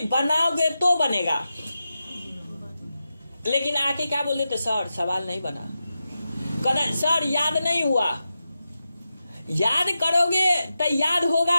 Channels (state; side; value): inverted; both; correlation -0.90